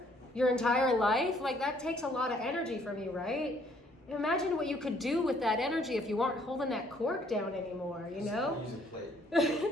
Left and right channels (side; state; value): both; normal; correlation 0.64